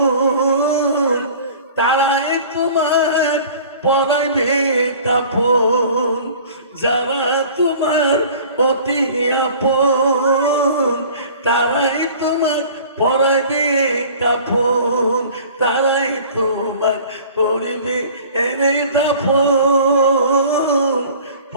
তোমার পরাইবে কাপন, যারা তোমার অতি আপন তারাই তোমার পরাইবে কাপন, তারাই তোমার করিবে এনে দাফন।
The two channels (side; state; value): both; inverted; correlation -0.46